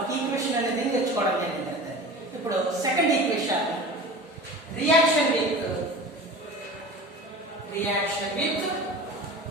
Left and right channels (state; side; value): normal; both; correlation 0.36